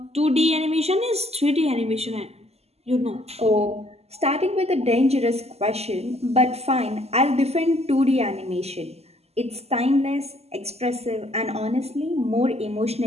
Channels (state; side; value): late; left; 0.30 ms